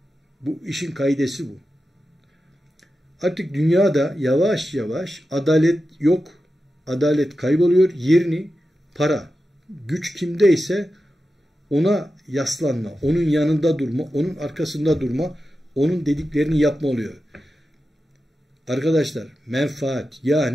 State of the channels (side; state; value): both; normal; correlation 0.91